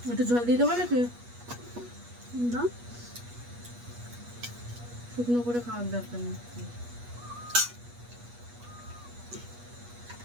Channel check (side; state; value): left; late; 8.3 ms